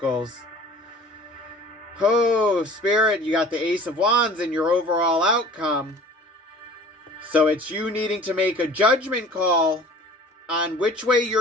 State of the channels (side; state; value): both; normal; correlation 0.46